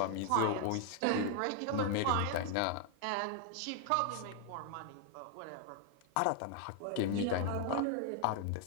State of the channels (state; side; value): different; both; correlation 0.00